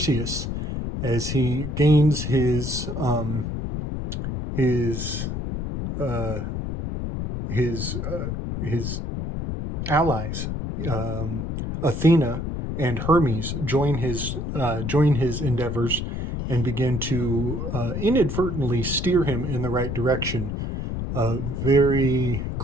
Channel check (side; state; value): left; noise; rumble, 4 dB below the sound